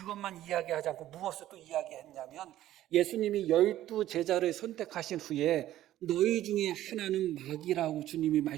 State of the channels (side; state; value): left; quieter; 13.6 dB